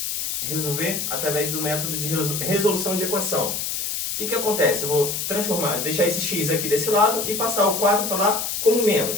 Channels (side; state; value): left; noise; hiss, 2 dB below the sound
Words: Resolver através do método de resolução de equação. O que acontece? Eu vou deixar esse x aqui desse lado e passar o 4 para lá como